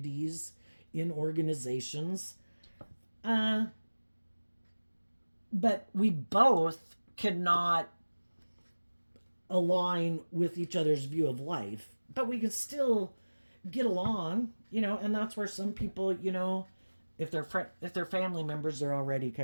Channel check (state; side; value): inverted; both; correlation -1.00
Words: in organizations. But we both cannot align with each other's view of life. But we can still get along, and that's where some people, if they're family members, they're already